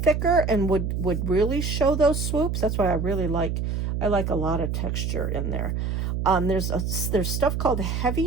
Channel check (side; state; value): right; noise; hum, 1 dB below the sound